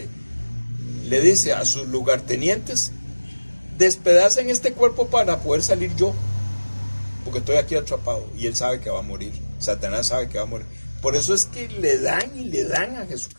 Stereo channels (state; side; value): inverted; both; correlation -1.00